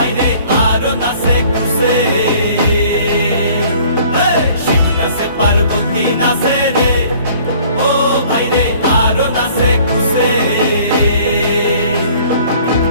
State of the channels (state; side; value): inverted; both; correlation -0.54